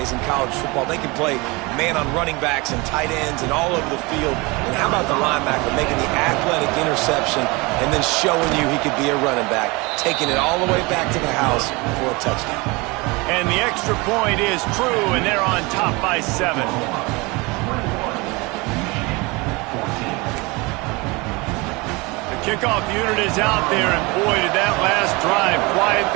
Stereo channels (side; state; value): left; quieter; 25.5 dB